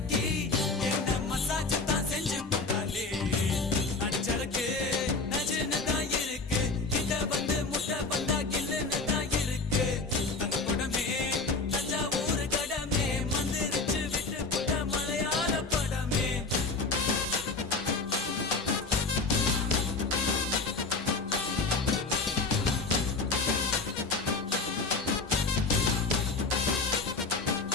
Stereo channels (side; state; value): right; quieter; 3.8 dB